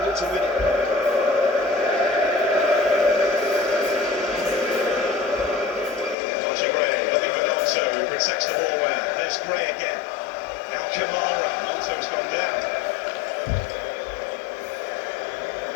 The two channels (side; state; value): right; drops out; at 6.2 s